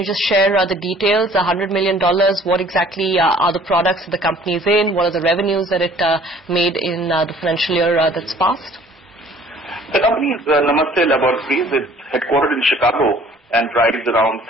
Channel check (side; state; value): both; normal; correlation 0.53